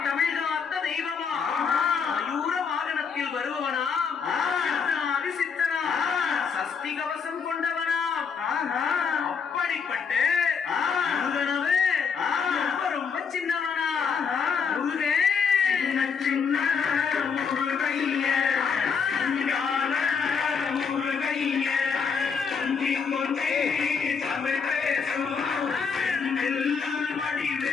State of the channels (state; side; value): quieter; right; 6.0 dB